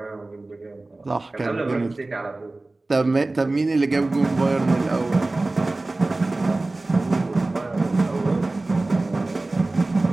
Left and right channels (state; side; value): quieter; left; 3.0 dB